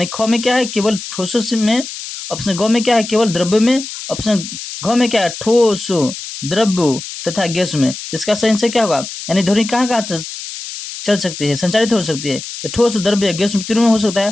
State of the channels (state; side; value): noise; left; hiss, 10 dB below the sound